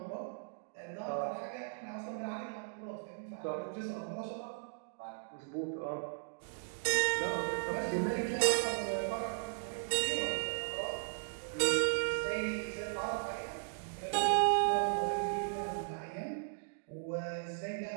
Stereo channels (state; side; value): silent; left; digital silence